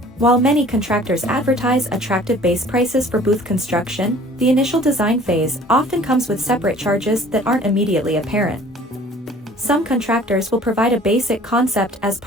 While many contractors advertise attractive base prices for booth construction, the initial design phase often comes with separate charges that aren't immediately apparent. Some contractors will provide a basic concept as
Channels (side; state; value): both; normal; correlation 0.50